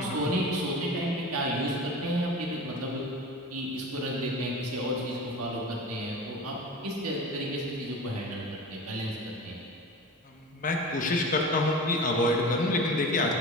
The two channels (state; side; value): normal; both; correlation 0.33